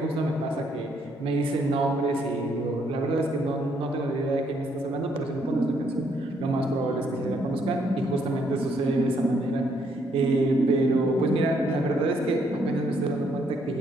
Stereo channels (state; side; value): normal; both; correlation 0.71